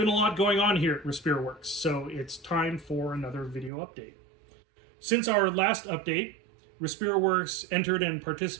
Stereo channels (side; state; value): left; drops out; at 3.7 s